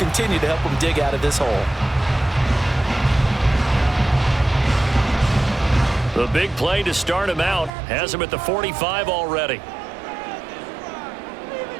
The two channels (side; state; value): left; drops out; at 7.7 s